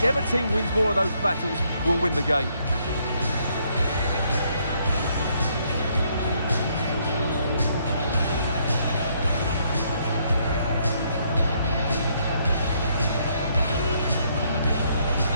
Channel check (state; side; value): inverted; both; correlation -0.70